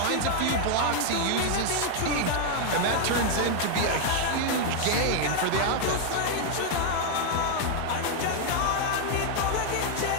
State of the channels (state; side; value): different; both; correlation 0.00